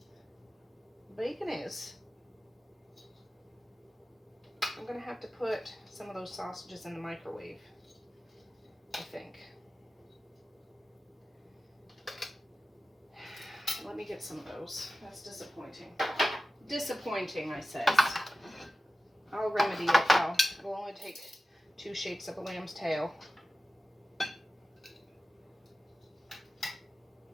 Bacon is. I'm going to have to put some of those sausages in the microwave, I think. Let me get some of those. That's disappointing. Disappointing, I says. I'll remedy it though. It'll only take 2 shakes of a lamb's tail.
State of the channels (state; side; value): normal; both; correlation 0.95